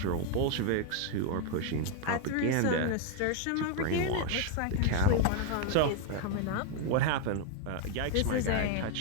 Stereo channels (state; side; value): different; both; correlation 0.00